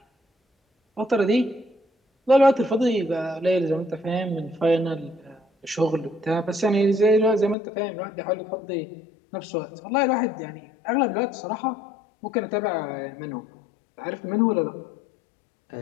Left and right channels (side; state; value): right; drops out; at 7.6 s